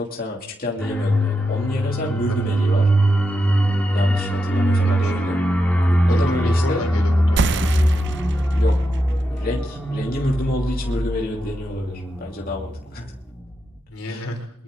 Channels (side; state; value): both; normal; correlation 0.86